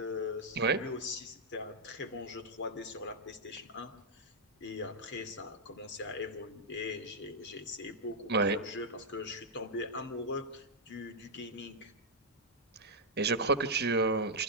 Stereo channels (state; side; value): normal; both; correlation -0.06